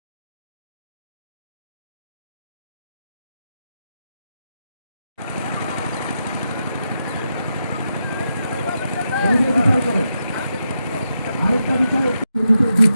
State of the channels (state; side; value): inverted; both; correlation -0.85